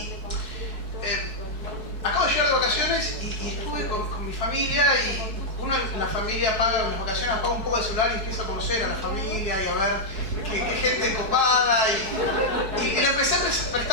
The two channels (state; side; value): late; left; 4.6 ms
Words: acabo de llegar de vacaciones y estuve con mi familia, y uno en la familia paga, en las vacaciones apaga un poco de celular y empieza a conocer a la familia y a ver qué gente copada, y le empecé a